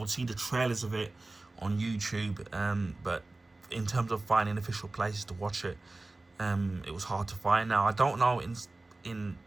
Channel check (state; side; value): quieter; left; 3.1 dB